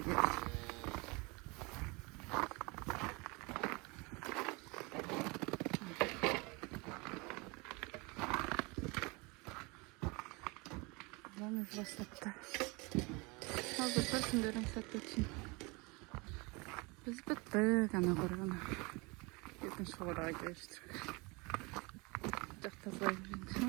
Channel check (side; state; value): left; quieter; 27.3 dB